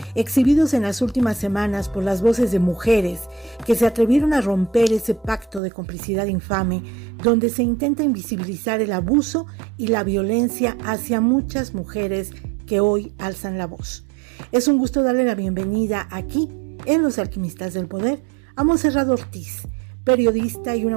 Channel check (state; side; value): drops out; left; at 5.6 s